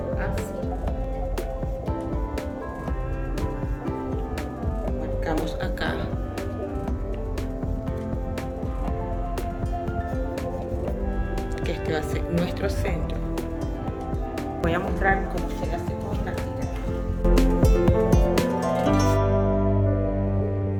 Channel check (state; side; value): identical; both; correlation 1.00